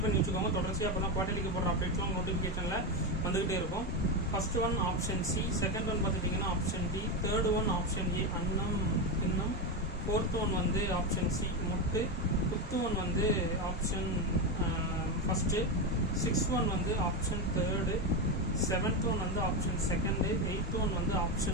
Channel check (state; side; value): normal; both; correlation 0.12